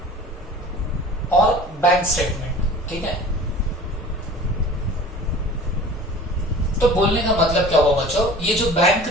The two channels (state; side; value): normal; both; correlation 0.43